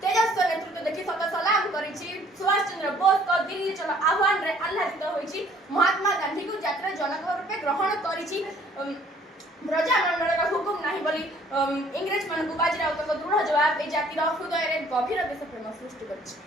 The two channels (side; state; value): both; normal; correlation 0.58